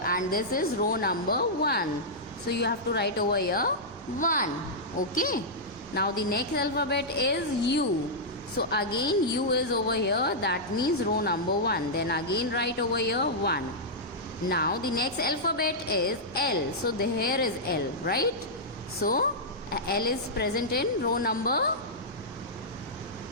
and this is row number 1. So you have to write over here 1. Okay. Now the next alphabet is U. So again U is over here, that means row number 1. Then again write over here 1. Now the next alphabet is L. So here is L, right? So L is present in row number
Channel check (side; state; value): both; normal; correlation -0.09